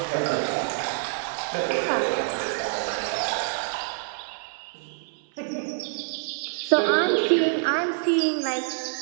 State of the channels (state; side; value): silent; left; digital silence